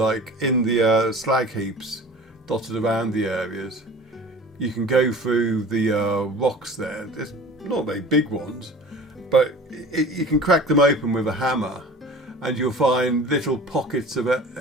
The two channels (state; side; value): normal; both; correlation 0.41